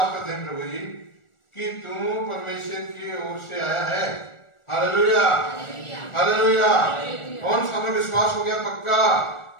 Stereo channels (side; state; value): right; late; 1.4 ms